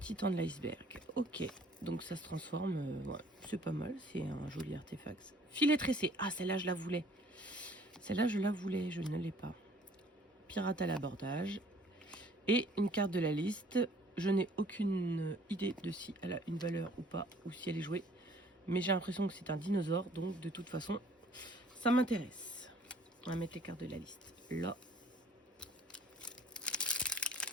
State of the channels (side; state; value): both; normal; correlation 0.56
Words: de l'iceberg. Ok, donc ça se transforme. Ouais, c'est pas mal, c'est un joli artefact. Filet tressé. Ah, celle-là, je la voulais. Celle-là, je la voulais, je ne l'ai pas. Pirate à l'abordage. Et une carte de la liste. Je n'ai aucune idée de si elle a une valeur ou pas, ou si elle est jouée. Mais j'ai l'impression que c'est un dinosaure, donc de toute façon, ça m'intéresse. On va mettre les cartes de la liste là.